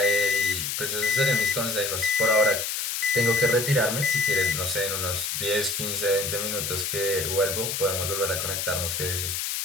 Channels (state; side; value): noise; left; hiss, 2 dB below the sound